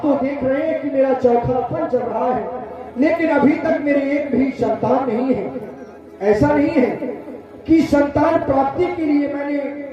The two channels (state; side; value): identical; both; correlation 1.00